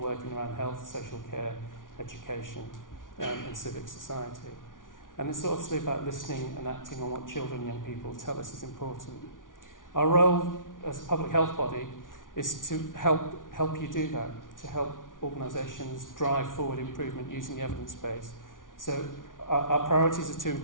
around health, social care, education, and civic society. And it's obviously about listening and acting on what children and young people tell us is important. Our role as a public health body is to help you do that, to help organisations drive forward improvement using the evidence base. So our priorities are to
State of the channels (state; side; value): late; right; 0.88 ms